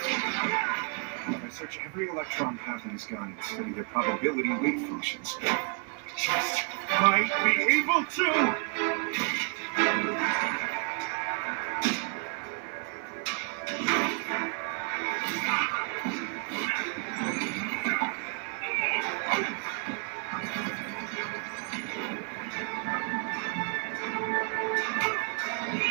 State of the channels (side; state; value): left; quieter; 38.9 dB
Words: If I search every electron path in this gun and study their probability weight functions, I just might be able to!